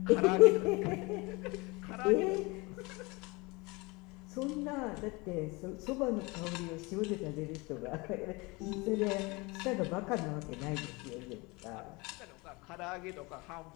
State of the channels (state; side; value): quieter; right; 25.6 dB